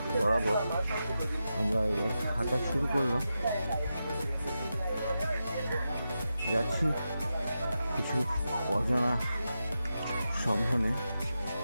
বরাবর আমরা এবার হাঁটা শুরু করলাম। যাচ্ছি কিছু অজানা সন্ধানে,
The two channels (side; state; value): both; inverted; correlation -0.89